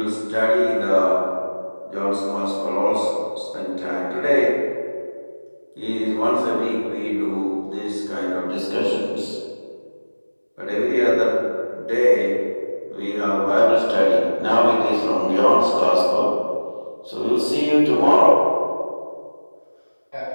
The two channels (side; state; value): both; inverted; correlation -1.00